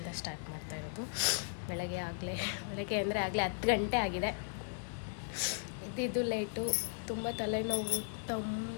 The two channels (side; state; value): right; silent; digital silence